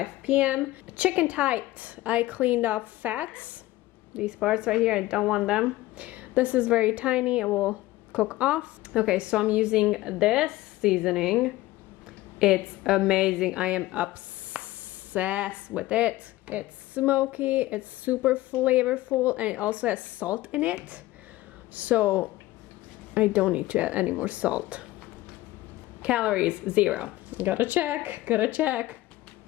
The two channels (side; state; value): right; quieter; 17.3 dB